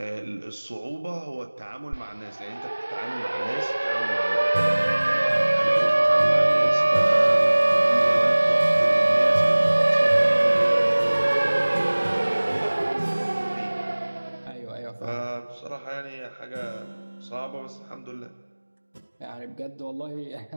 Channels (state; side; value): inverted; both; correlation -1.00